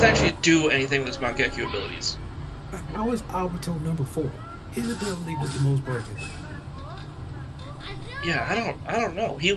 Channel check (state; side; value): identical; both; correlation 1.00